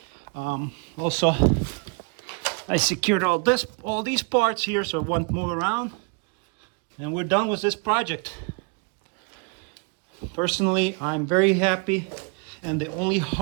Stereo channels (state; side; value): quieter; left; 33.5 dB